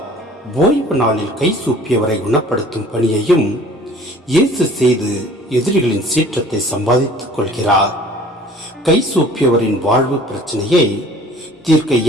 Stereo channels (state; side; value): normal; both; correlation 0.50